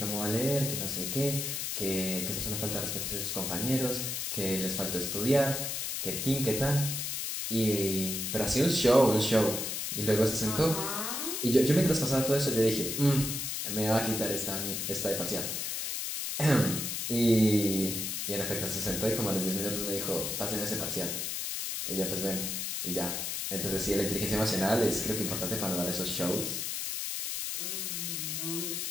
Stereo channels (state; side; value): noise; left; hiss, 2 dB below the sound